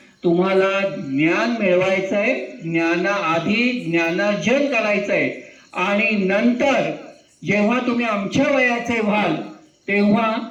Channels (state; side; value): identical; both; correlation 1.00